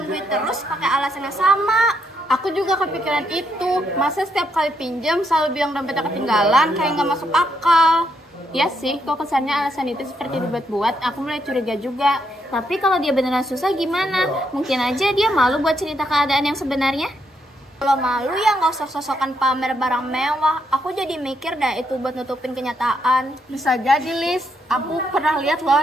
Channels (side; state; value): both; normal; correlation 0.77